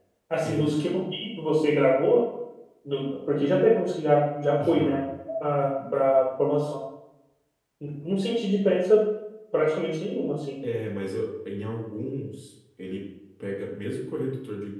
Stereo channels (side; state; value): both; identical; correlation 1.00